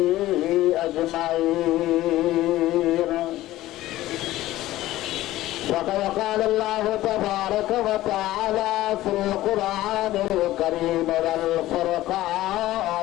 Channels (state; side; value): quieter; right; 15.7 dB